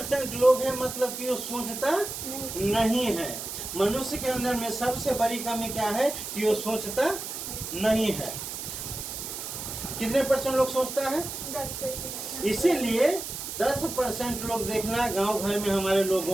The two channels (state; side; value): noise; right; hiss, 7 dB below the sound